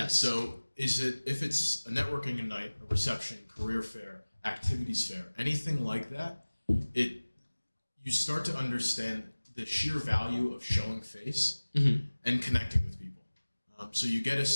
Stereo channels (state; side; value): inverted; both; correlation -1.00